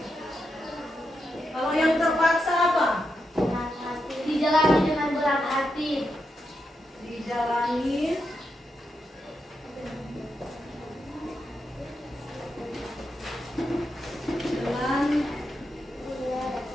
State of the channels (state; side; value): normal; both; correlation 0.85